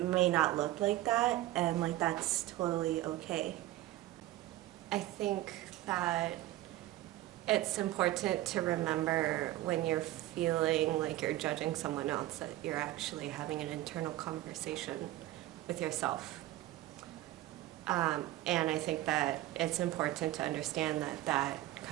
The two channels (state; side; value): quieter; left; 15.8 dB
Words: not look like that, and like that's totally okay. I think that it's important to remember when you're feeling like you're judging someone else that you're actually having an internal conversation with yourself. And I think that it's important to understand that that